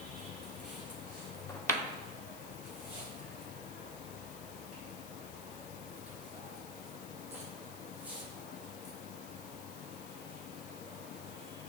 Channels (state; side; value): noise; left; hiss, 9 dB below the sound